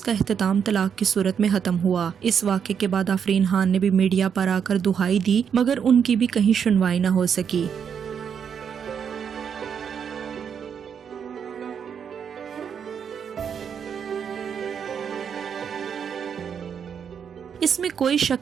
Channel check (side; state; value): left; quieter; 7.5 dB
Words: इख्तिताम तलाक की सूरत में खत्म हुआ। इस वाक़े के बाद आफरीन खान ने भी मीडिया पर आकर दुहाई दी, मगर उनकी भी कहीं सुनवाई न हो सकी। इसमें कोई